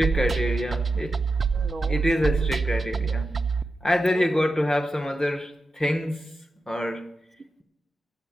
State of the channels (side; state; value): both; normal; correlation 0.90